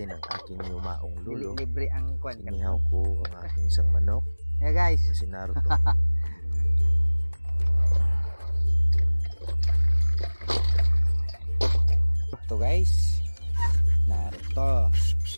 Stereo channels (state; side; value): inverted; both; correlation -1.00